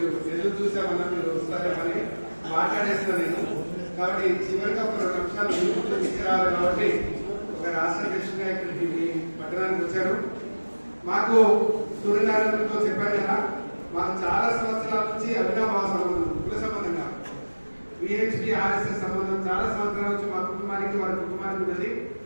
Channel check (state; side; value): inverted; both; correlation -1.00